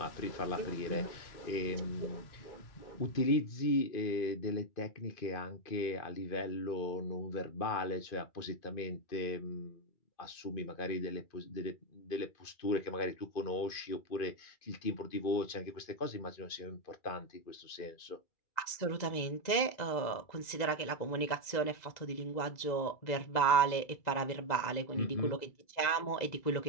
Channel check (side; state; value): right; late; 2.0 ms